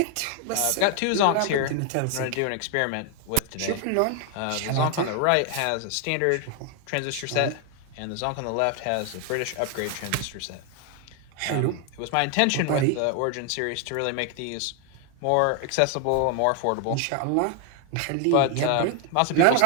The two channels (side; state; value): both; different; correlation 0.00